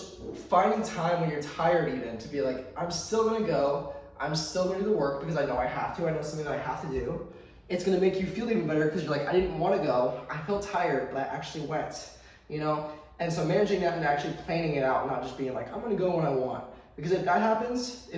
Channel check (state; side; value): identical; both; correlation 1.00